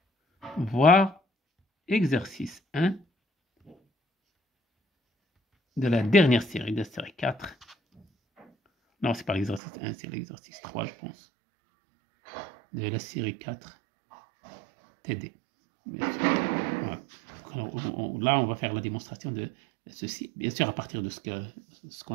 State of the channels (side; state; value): left; drops out; at 9.6 s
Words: Voir exercice 1 de la dernière série, de la série 4. Non, c'est pas l'exercice 1, c'est l'exercice 3, je pense. De la série 4 TD. Bien sûr. Voilà. Alors, là, on va faire la démonstration de ceci, bien sûr, à partir de ce